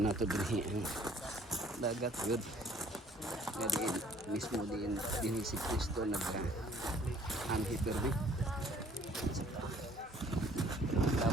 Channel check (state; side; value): normal; both; correlation 0.57